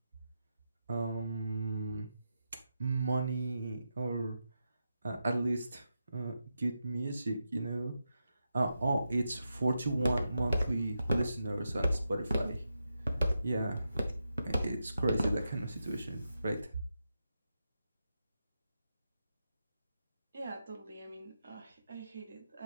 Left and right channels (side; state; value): both; inverted; correlation -0.87